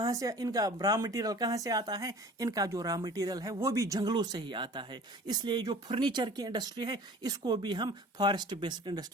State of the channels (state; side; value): normal; both; correlation 0.45